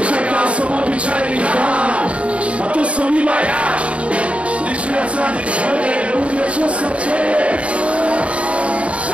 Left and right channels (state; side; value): late; left; 0.062 ms